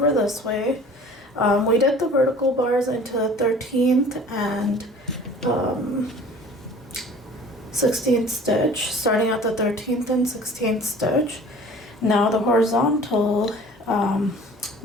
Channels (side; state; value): both; normal; correlation 0.46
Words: this way. We did the vertical bars into the 13th and 16th stitch, starting at the 13th and 16th stitch. Now the horizontal